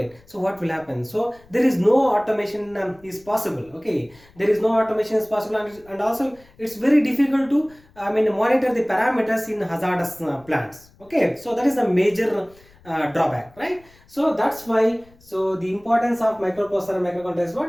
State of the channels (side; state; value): left; noise; rumble, 28 dB below the sound